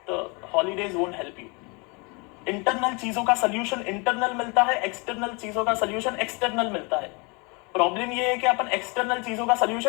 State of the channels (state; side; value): quieter; right; 30.1 dB